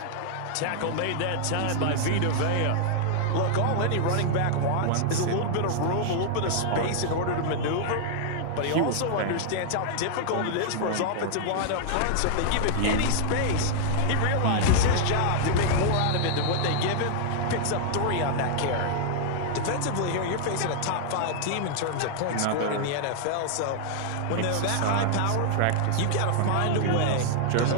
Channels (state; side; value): different; both; correlation -0.01